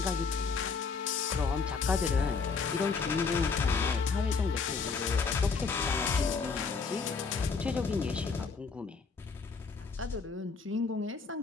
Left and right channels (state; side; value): quieter; right; 5.0 dB